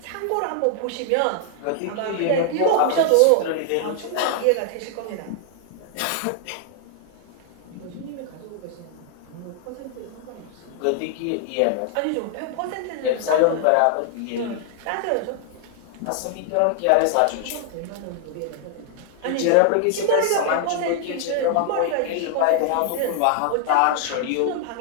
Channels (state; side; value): different; both; correlation 0.00